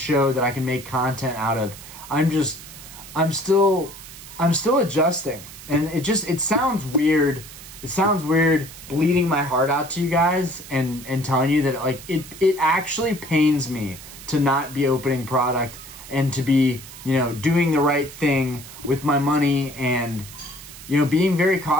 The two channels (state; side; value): noise; right; hiss, 16 dB below the sound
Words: that I can make content out of. I'm still adjusting, and it sounds weird. It sounds weird bleeding my heart out to you guys and telling you that, like, it actually pains me to not be opening product and to be, you know, doing the right thing with my money and, you know, being very